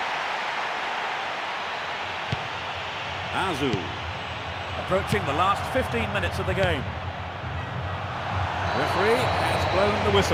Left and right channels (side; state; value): both; identical; correlation 1.00